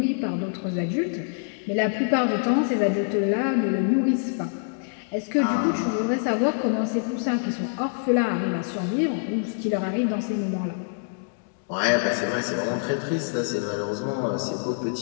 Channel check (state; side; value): silent; right; digital silence